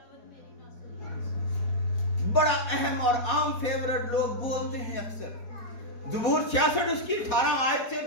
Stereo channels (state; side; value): late; right; 4.6 ms